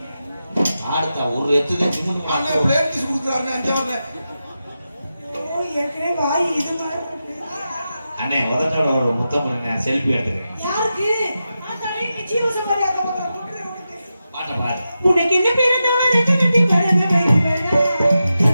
ஆடுத்தா ஒரு எத்துதான் சின்ன அண்ணன் பிளேட் பீஸ் கொடுக்குறாருண்ணே அஞ்சாவது. ஏற்கனவே வாய் இது மாதிரி இருக்கு. அண்ணே உதட்டோட ஒரு முத்தம் பண்ணி செல்ஃபி எடுத்துக்கிறேன். யாருக்கு? ஆத்தாடி, நீ ஜீவசமாரி அந்த பக்கம் போட்டுற உனக்கு. பாட்ட பாடு. உனக்கு என்ன பிறந்தவள ரெண்டு கட்டி பறந்த பயிர் வேணா.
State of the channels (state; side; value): inverted; both; correlation -0.90